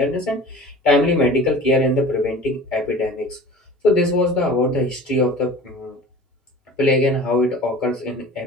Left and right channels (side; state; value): both; normal; correlation 0.41